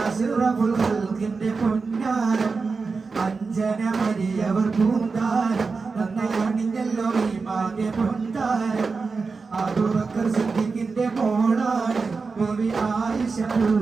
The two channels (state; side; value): quieter; left; 4.5 dB